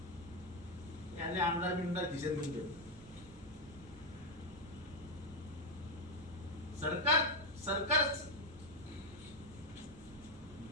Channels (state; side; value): noise; right; rumble, 19 dB below the sound